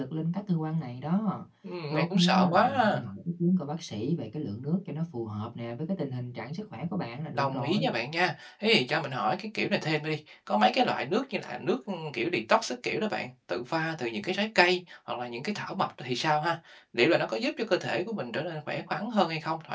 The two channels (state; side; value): identical; both; correlation 1.00